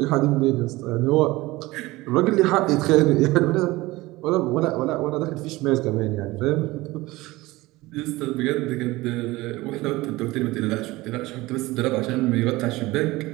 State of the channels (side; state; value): left; quieter; 19.9 dB